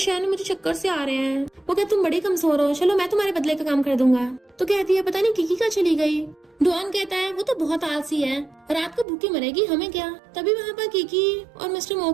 मुझे चक्कर से आ रहे हैं। वो कहते तुम बड़ी कमजोर हो, चलो मैं तुम्हारे बदले का काम कर दूंगा। तो कहती है पता नहीं किकी कहाँ चली गई। डुआन कहता है वो तो बहुत आलसी है, रात को भूखी मरेगी, हमें क्या। तभी वहाँ पर किकी और मिस्टर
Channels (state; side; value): drops out; left; at 9.1 s